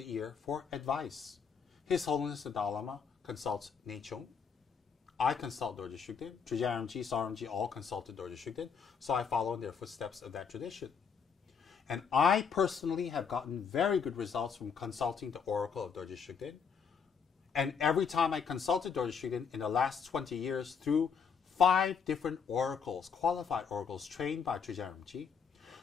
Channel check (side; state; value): right; quieter; 6.4 dB